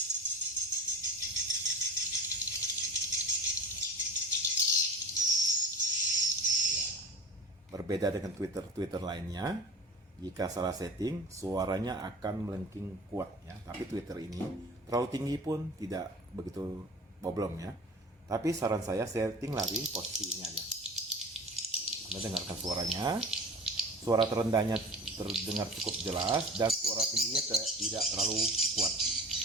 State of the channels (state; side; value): normal; both; correlation 0.37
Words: Berbeda dengan Twitter lainnya, jika salah setting, suaranya akan melengking kuat ya. Tapi Twitter ini terlalu tinggi pun tidak begitu problem ya. Tapi saran saya setting lagi posisi ini aja. Anda dengarkan suaranya. Suara terendahnya terdengar cukup jelas dan suara tingginya tidak terlalu kuat.